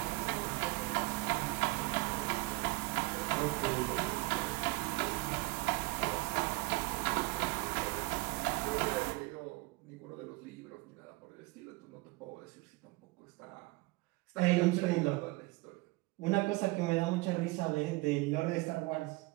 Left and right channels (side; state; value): left; quieter; 23.1 dB